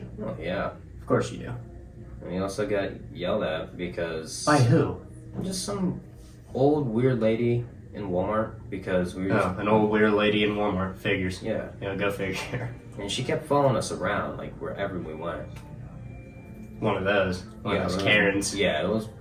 Oh yeah. Of course you do. And you also got yelled at because By who? just some old weird lady in Walmart because we were Oh, an old weird lady in Walmart. Figures. yeah, You know, go figure. and she kept following us around like wherever we went. One of those. One of those Karens. Yeah, it was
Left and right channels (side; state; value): both; identical; correlation 1.00